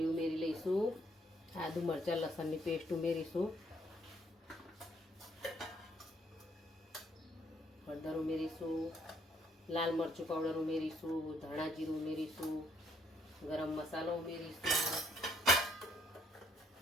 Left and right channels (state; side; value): normal; both; correlation 0.68